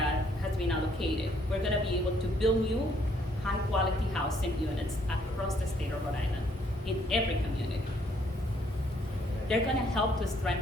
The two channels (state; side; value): normal; both; correlation 0.67